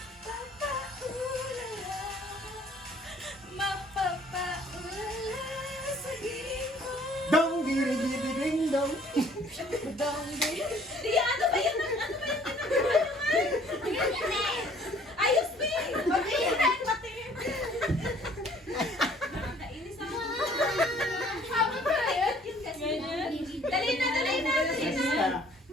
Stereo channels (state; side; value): normal; both; correlation 0.57